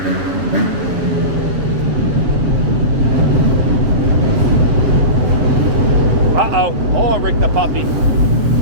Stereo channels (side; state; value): left; late; 7.6 ms